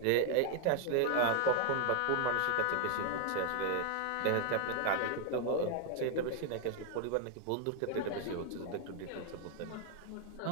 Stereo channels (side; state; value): both; different; correlation 0.00